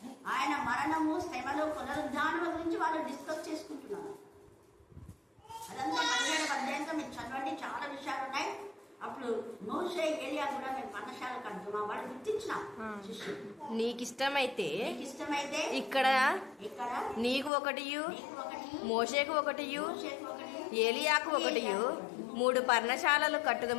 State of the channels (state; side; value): drops out; right; at 17.5 s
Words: ఆయన మరణము, శ్రమలు, పునరుద్ధానం గురించి వాళ్ళు డిస్కస్ చేసుకుంటున్నారు. అదంతా 17వ అధ్యాయంతో మీరు చదవండి, చాలా విషయాలు ఉన్నాయి. అప్పుడు మోషే ఏలియా కూడా మేము పర్ణశాల కడుతున్నా వాళ్ళు గుర్తించిన శిష్యుడు. నీకు ఇష్టమైతే ఇక్కడ నీకు ఒకటియు, మోషేకు ఒకటియు, ఏలియాకు ఒకటియు 3 పర్ణశాలలు